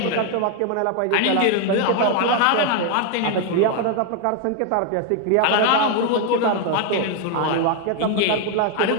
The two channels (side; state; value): both; different; correlation 0.01